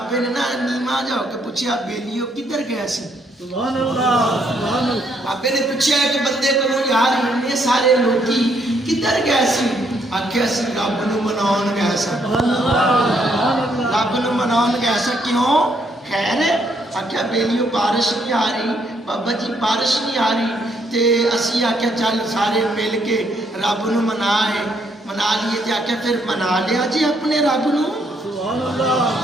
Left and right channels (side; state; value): both; normal; correlation 0.72